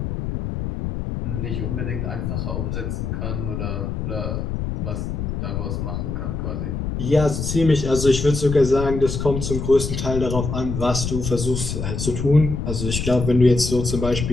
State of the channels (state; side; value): noise; left; rumble, 3 dB below the sound